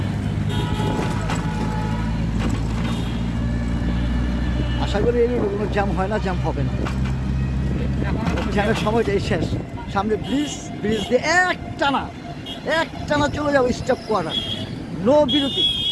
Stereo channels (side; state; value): both; identical; correlation 1.00